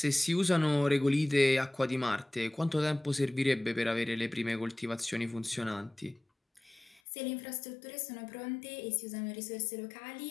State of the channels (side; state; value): right; drops out; at 7.0 s